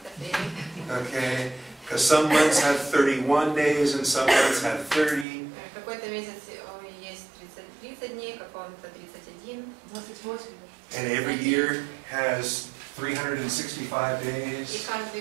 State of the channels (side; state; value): left; drops out; at 5.2 s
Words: апрель. Okay? Because some months have 31 days and some months have 30. Какой-то месяц есть 30 дней, какого-то 31. 28. And every year has 365 И days. каждый